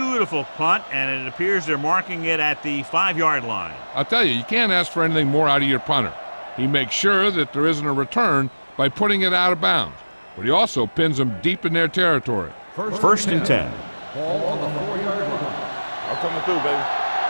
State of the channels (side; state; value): both; inverted; correlation -1.00